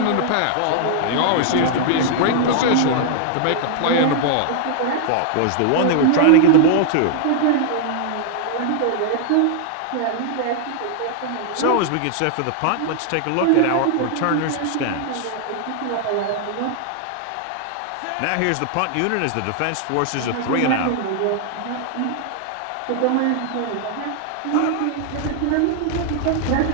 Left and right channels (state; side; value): different; both; correlation 0.00